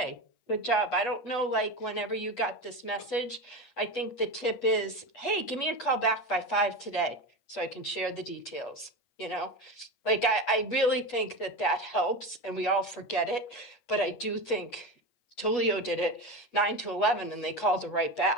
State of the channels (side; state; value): right; late; 8.2 ms